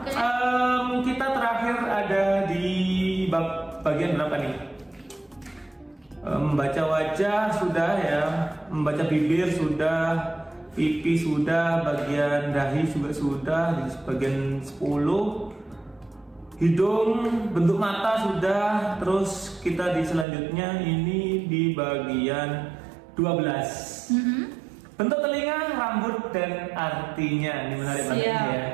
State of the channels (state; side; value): drops out; left; at 20.2 s